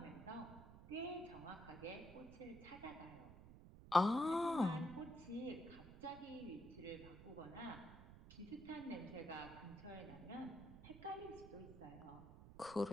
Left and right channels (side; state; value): right; noise; rumble, 15 dB below the sound